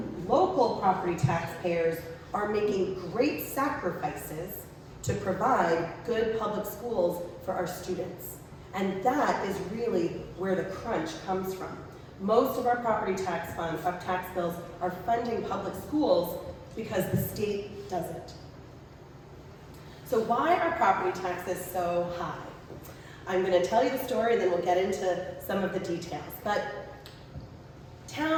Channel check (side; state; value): both; identical; correlation 1.00